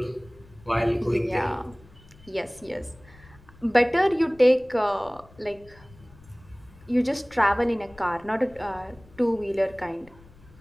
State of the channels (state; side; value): noise; left; rumble, 24 dB below the sound